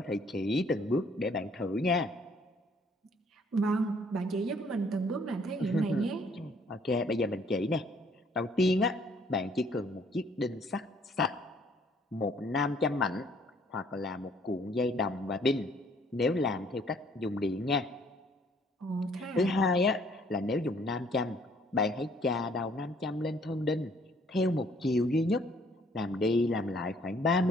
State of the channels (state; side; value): normal; both; correlation 0.61